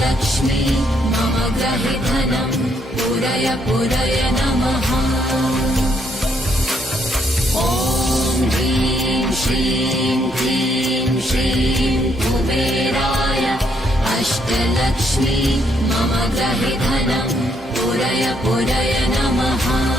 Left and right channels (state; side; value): normal; both; correlation 0.72